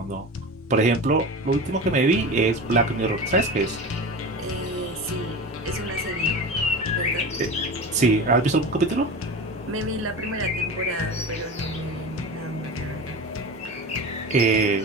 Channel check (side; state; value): both; normal; correlation 0.29